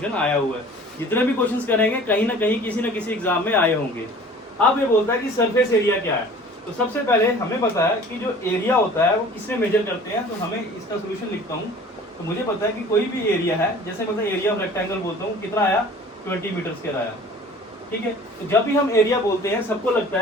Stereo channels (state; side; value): normal; both; correlation 0.46